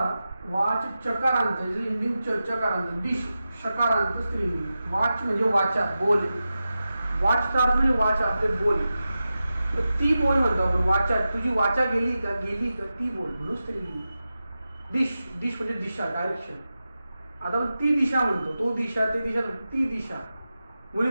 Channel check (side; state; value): both; inverted; correlation -0.93